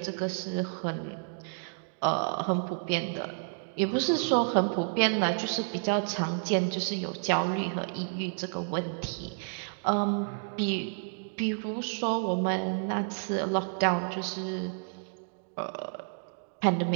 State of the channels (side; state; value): left; silent; digital silence